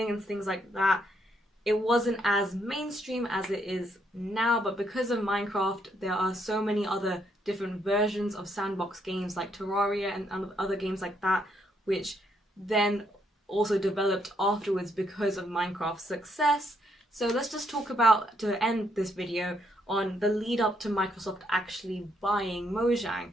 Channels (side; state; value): both; normal; correlation 0.74